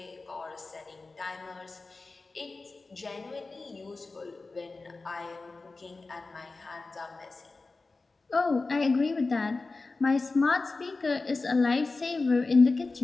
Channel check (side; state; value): right; quieter; 3.7 dB